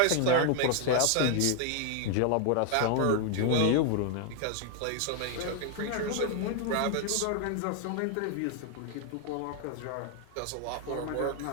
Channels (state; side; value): different; both; correlation 0.00